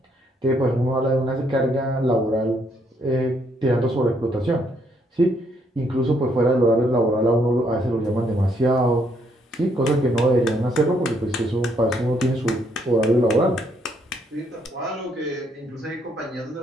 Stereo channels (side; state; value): both; normal; correlation 0.71